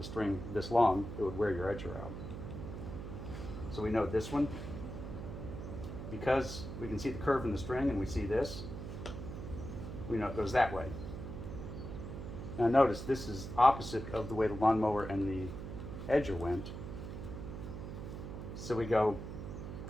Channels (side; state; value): right; noise; hum, 8 dB below the sound